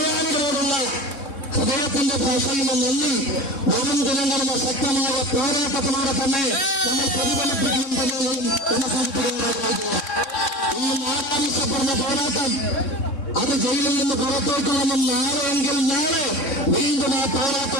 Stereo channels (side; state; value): right; late; 3.6 ms